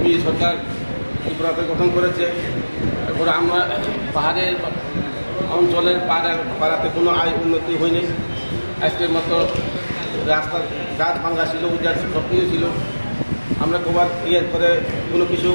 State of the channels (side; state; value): both; inverted; correlation -1.00